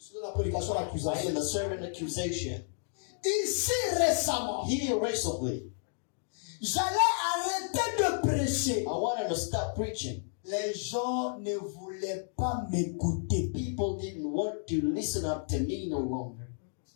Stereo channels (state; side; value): silent; right; digital silence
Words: suis dans la prédication I am d'accusation. the servant accusation. Ici récemment, Here recently, j'allais arrêter de prêcher. I wanted to stop preaching. Les gens ne voulaient pas m'écouter. People didn't want to listen up to me no longer.